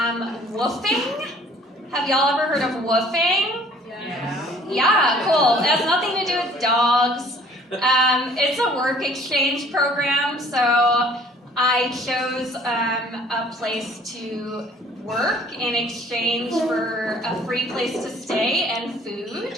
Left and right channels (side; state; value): both; normal; correlation 0.55